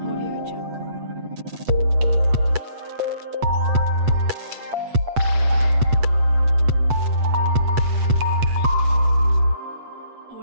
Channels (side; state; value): left; late; 8.2 ms